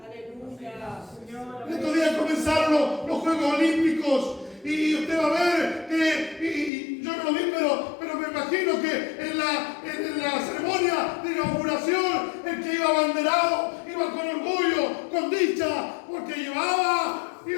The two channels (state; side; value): drops out; right; at 6.7 s